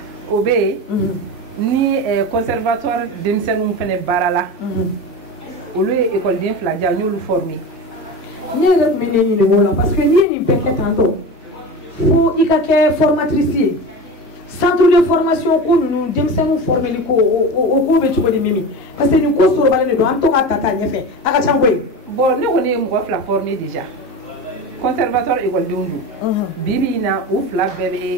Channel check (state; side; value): normal; both; correlation 0.28